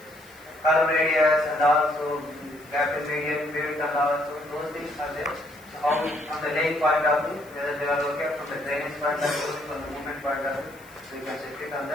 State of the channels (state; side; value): noise; left; hiss, 25 dB below the sound